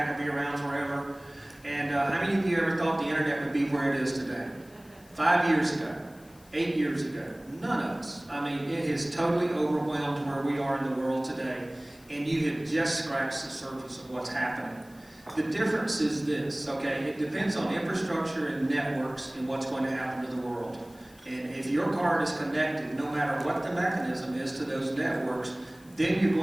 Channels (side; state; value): left; noise; hiss, 26 dB below the sound